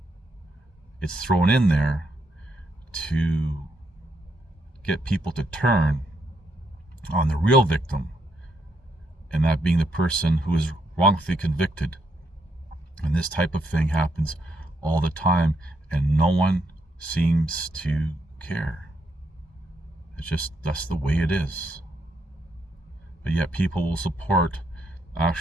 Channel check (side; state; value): both; normal; correlation 0.77